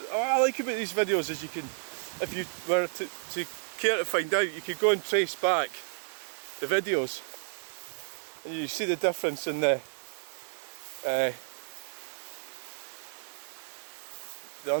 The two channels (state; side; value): silent; left; digital silence